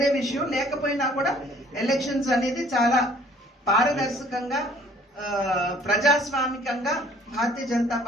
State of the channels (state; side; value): normal; both; correlation 0.56